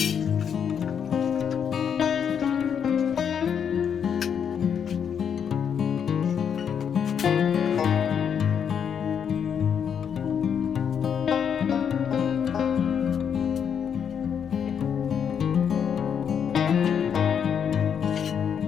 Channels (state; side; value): quieter; right; 7.8 dB